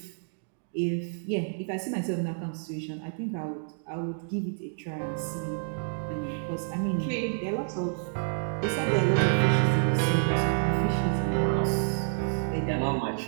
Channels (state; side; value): silent; left; digital silence